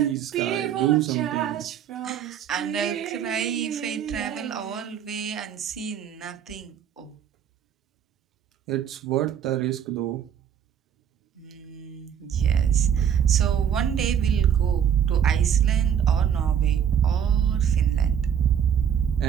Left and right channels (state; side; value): quieter; left; 8.7 dB